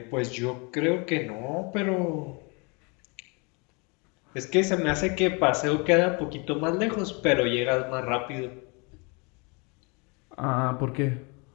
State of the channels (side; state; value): right; quieter; 31.0 dB